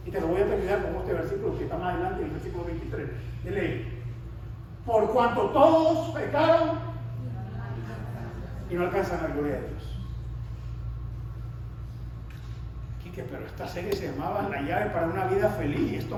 Y te lo voy a terminar con este versículo que está más adelante, el versículo 23 de ley. Por cuanto todos pecaron y no alcanzan la gloria de Dios. Quique, pero esta serie se llamaba La llave para una vida feliz y esto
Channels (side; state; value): both; identical; correlation 1.00